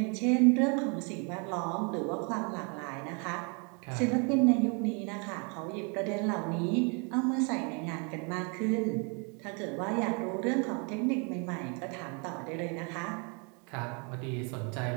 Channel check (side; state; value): left; quieter; 34.6 dB